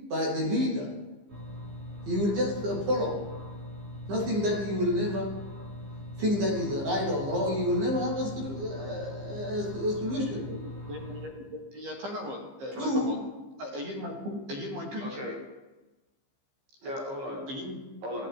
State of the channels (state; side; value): late; left; 15 ms